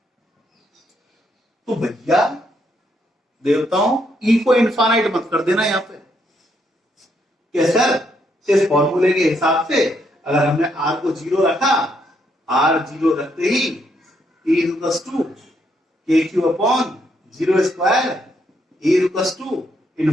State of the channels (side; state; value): both; normal; correlation 0.75